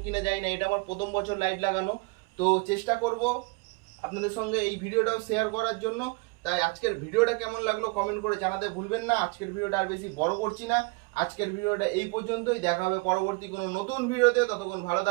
কিনা জানি না, এটা আমার প্রথম বছর লাইট লাগানো। তো চেষ্টা করব আপনাদের সঙ্গে এই ভিডিওটাও শেয়ার করার জন্য। তাই আজকের ভিডিওটা কেমন লাগলো কমেন্ট করে জানাতে ভুলবেন না। আজকের ভিডিওটা আর বেশি বড় করছি না, আজকের ভিডিওটা এই পর্যন্তই। দেখা হবে পরবর্তী কোনো নতুন ভিডিওতে, ততক্ষণ ভালো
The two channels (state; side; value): quieter; left; 28.7 dB